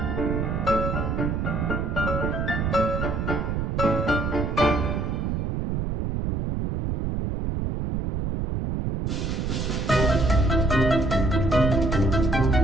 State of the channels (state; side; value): noise; right; rumble, 1 dB below the sound